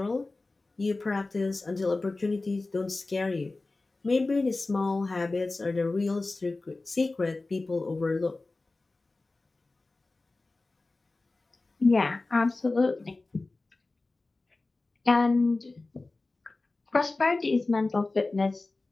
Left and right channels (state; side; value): quieter; right; 3.3 dB